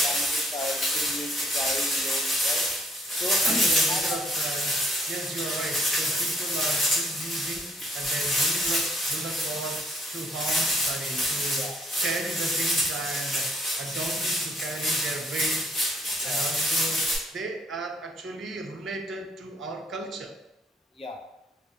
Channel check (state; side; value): normal; both; correlation 0.63